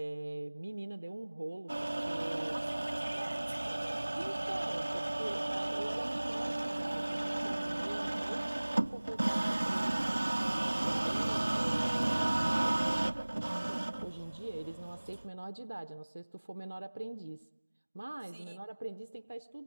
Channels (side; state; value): both; inverted; correlation -1.00